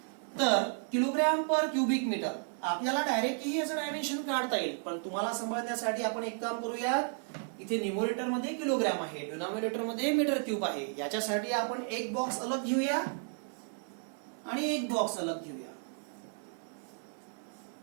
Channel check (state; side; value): silent; left; 56 dB below the other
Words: तर किलोग्राम पर क्यूबिक मीटर आपल्याला डायरेक्टली याचं डायमेन्शन काढता येईल, पण तुम्हाला समजण्यासाठी आपण एक काम करूयात. इथे न्यूमरेटर मध्ये किलोग्राम आहे, डिनॉमिनेटर मध्ये मीटर क्यूब आहे. याच्यासाठी आपण एक बॉक्स अलग घेऊया आणि एक बॉक्स अलग घेऊया.